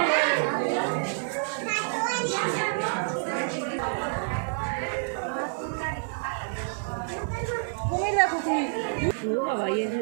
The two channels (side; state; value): left; silent; 59 dB below the other